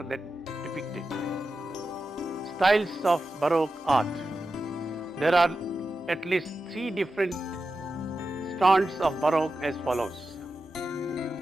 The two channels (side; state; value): both; normal; correlation 0.91